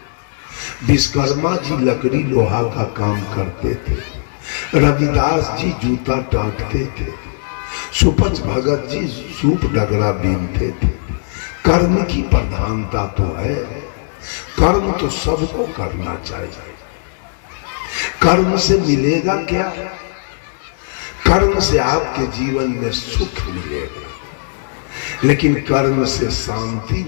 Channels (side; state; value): right; silent; digital silence